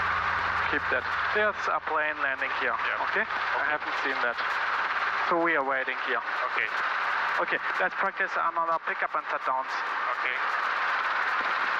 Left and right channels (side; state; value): both; identical; correlation 1.00